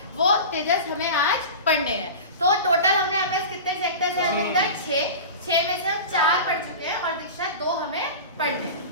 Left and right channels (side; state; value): both; inverted; correlation -0.30